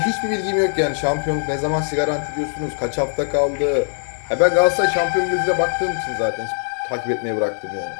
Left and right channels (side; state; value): right; silent; 65 dB below the other